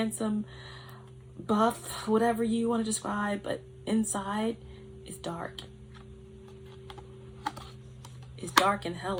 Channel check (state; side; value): identical; both; correlation 1.00